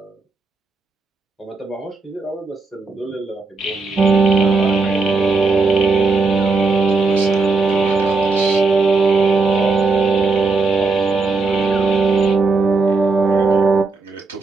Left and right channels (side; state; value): left; quieter; 3.9 dB